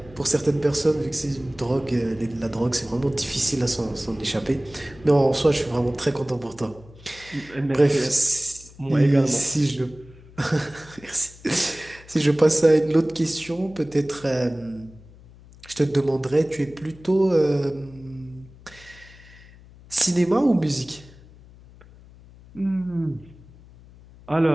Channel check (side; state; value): left; noise; hum, 22 dB below the sound